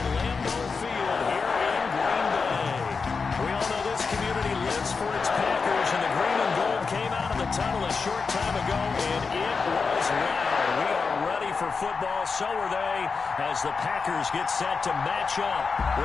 Lambeau Field here in Green Bay. We all know this community lives for its Packers, and the green and gold came out of the tunnel a short time ago, and it was loud. We are ready for football, so are they, as the Packers get set to match up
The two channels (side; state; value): right; quieter; 4.9 dB